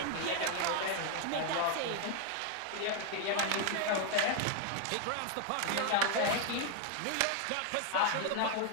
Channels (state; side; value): different; both; correlation 0.00